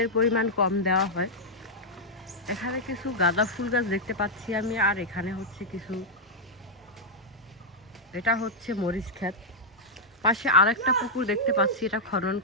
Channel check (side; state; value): both; normal; correlation -0.05